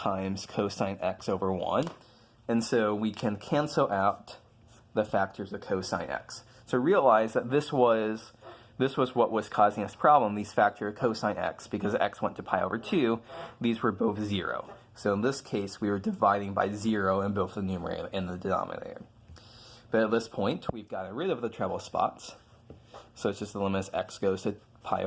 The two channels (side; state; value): both; identical; correlation 1.00